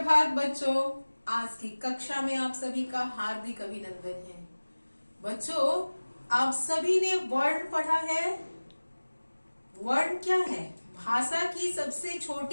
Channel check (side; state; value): both; inverted; correlation -1.00